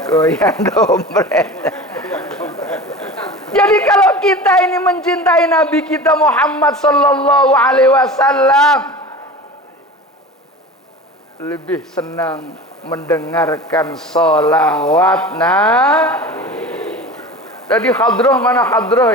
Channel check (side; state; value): both; normal; correlation 0.34